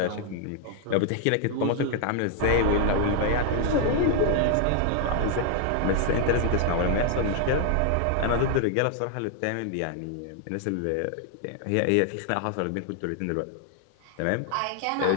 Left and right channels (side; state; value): both; different; correlation 0.00